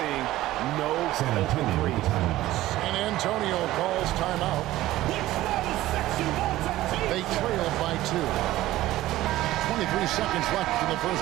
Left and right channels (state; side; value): quieter; left; 15.8 dB